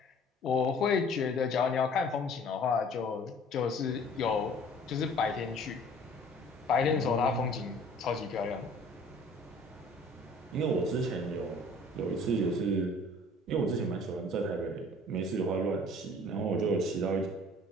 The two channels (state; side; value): normal; both; correlation 0.51